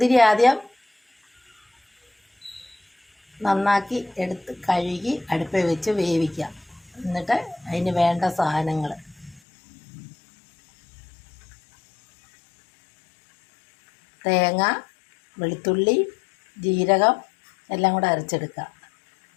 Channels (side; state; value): right; drops out; at 9.4 s